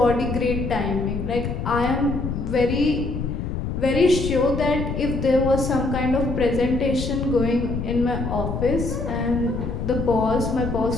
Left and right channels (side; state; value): left; noise; rumble, 4 dB below the sound